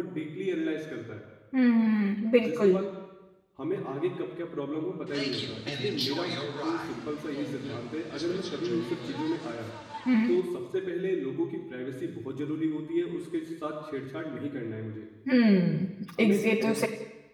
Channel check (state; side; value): identical; both; correlation 1.00